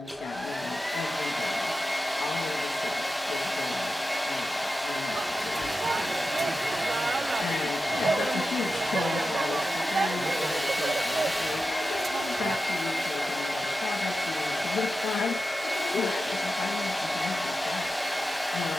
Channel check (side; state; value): both; normal; correlation 0.92